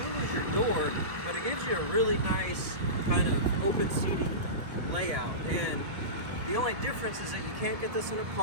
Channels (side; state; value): left; late; 1.7 ms